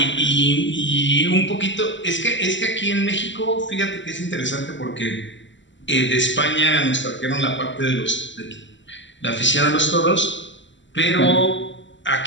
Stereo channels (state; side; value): late; right; 0.54 ms